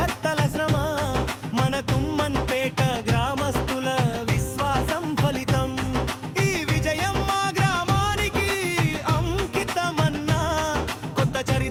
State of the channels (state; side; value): identical; both; correlation 1.00